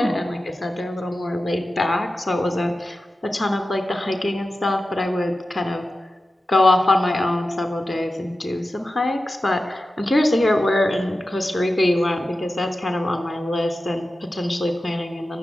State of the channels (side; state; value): both; normal; correlation 0.93